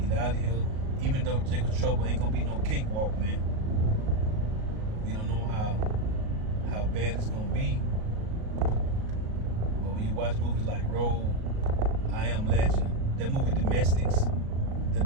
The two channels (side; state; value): left; late; 37 ms